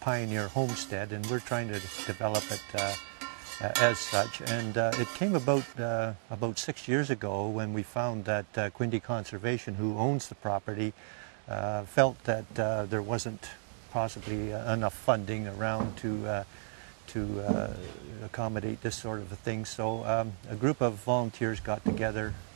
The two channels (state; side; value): silent; left; digital silence